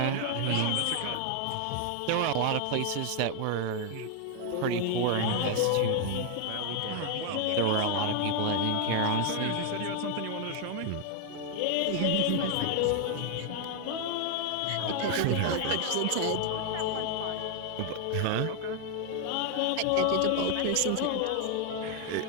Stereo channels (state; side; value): different; both; correlation 0.00